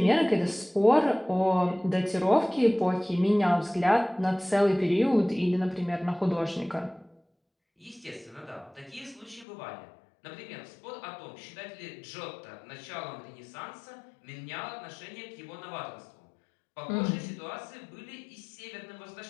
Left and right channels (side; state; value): right; drops out; at 9.5 s